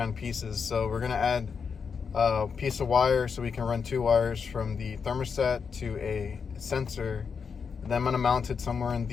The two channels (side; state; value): right; quieter; 6.0 dB